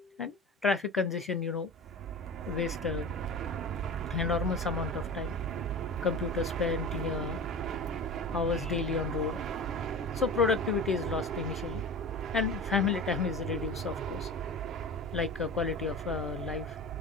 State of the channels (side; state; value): both; normal; correlation 0.33